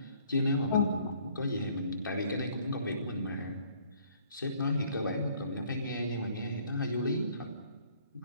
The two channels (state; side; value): inverted; both; correlation -0.60